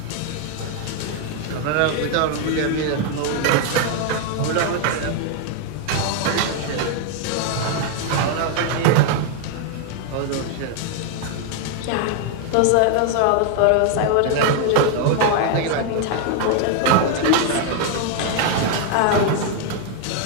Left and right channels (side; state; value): both; different; correlation 0.00